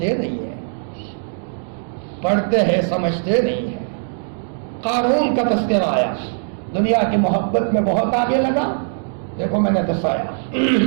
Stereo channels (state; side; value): silent; left; digital silence